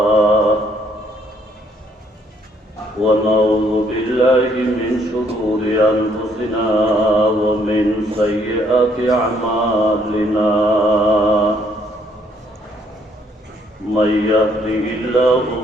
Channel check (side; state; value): both; normal; correlation 0.68